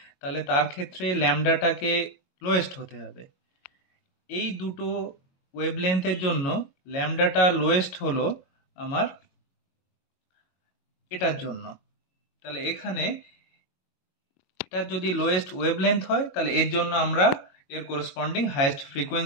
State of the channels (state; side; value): late; right; 22 ms